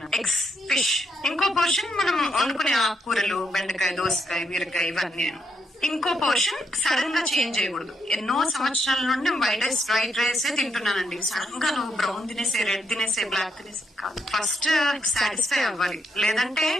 ఎగ్స్, ఫిష్. ఇంకో పోర్షన్ మనం వండుకునే ఆకుకూరలు, బెండకాయ, దోసకాయ, బీరకాయ, ఇవన్నీ. ఇంకో పోర్షన్ సడన్ గా చేంజ్ చేయకూడదు. ఎన్నో సంవత్సరాల నుండి వైట్ రైస్, వైట్ రైస్ తింటున్నానండి. సడన్ గా నువ్వు బ్రౌన్ తినేసే, రెడ్ తినేసే, బ్లాక్ తినేసే కాదు. ఫస్ట్ సాటిస్ఫై అవ్వాలి. లేదంటే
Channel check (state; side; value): normal; both; correlation 0.77